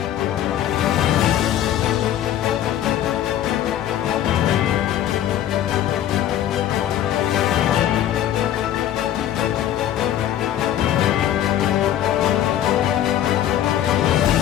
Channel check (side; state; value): right; quieter; 11.5 dB